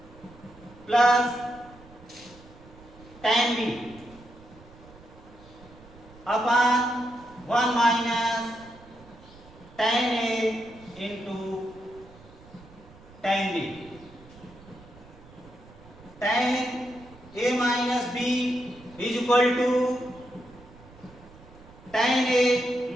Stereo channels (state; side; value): noise; right; rumble, 22 dB below the sound